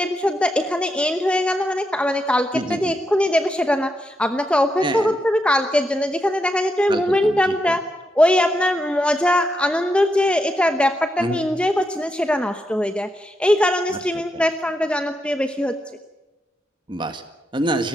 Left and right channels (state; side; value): normal; both; correlation 0.83